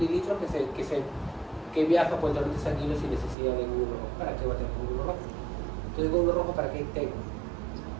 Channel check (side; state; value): left; drops out; at 3.4 s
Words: que viaja por el torrente sanguíneo sin necesidad de glóbulo rojo. ¿Para qué va a tener glóbulo rojo? Entonces, glóbulo rojo, ¿para qué tengo?